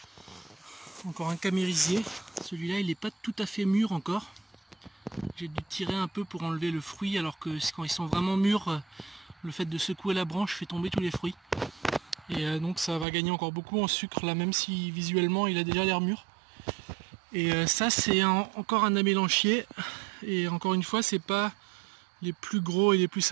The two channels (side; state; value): left; drops out; at 13.1 s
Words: Encore un camérisier, celui-là il n'est pas tout à fait mûr encore. J'ai dû tirer un peu pour enlever le fruit, alors que quand ils sont vraiment mûrs, le fait de secouer la branche fait tomber tous les fruits. Et donc ça va gagner encore beaucoup en sucre là, même si visuellement il a déjà l'air mûr. Et ça c'est encore un amélanchier. Et encore une fois, c'est pas les plus gros et les plus